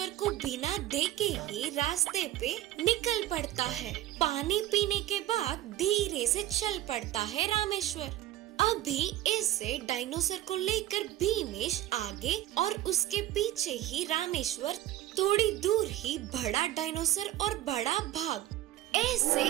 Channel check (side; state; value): left; quieter; 14.4 dB